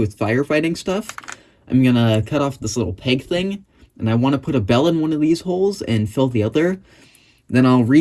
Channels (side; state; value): both; identical; correlation 1.00